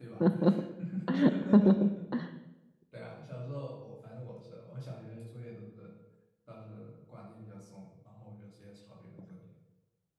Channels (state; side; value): identical; both; correlation 1.00